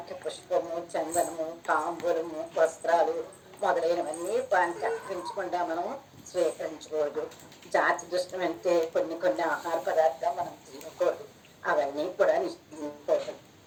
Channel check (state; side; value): identical; both; correlation 1.00